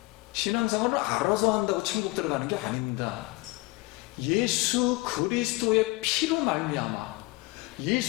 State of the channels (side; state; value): right; quieter; 22.7 dB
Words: 신앙생활을 알아서 한다고 천국 들어가는 게 아닙니다. 예수 그리스도의 피로 말미암아